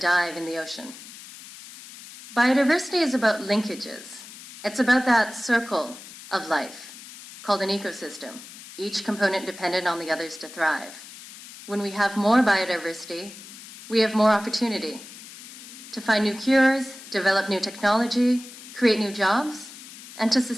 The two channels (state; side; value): noise; left; hiss, 16 dB below the sound